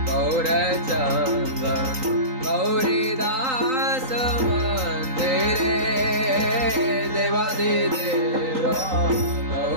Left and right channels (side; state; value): left; late; 3.9 ms